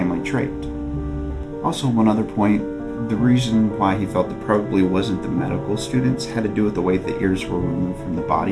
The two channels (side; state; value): both; identical; correlation 1.00